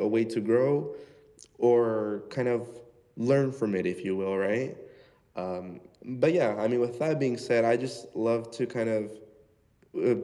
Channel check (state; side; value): identical; both; correlation 1.00